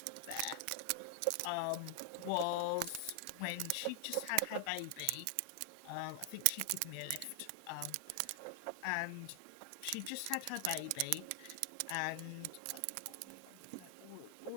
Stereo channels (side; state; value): both; different; correlation 0.00